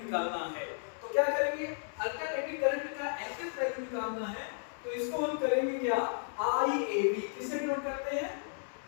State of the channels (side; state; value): right; silent; 55 dB below the other